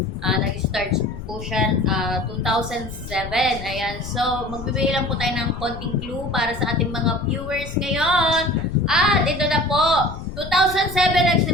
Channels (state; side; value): noise; left; rumble, 10 dB below the sound